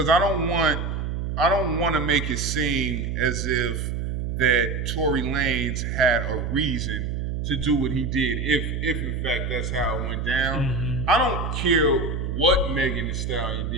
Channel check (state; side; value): noise; right; hum, 3 dB below the sound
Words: I don't want to make it seem as if that Tory Lanez had a reason to do what he did, if in fact that's how it went down. Mm-hmm. I don't care what Megan Thee Stallion